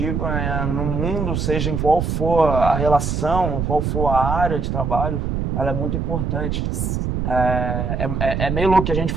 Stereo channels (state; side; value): noise; right; rumble, 1 dB below the sound